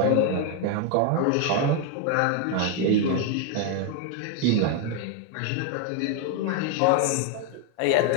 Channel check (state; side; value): different; both; correlation 0.01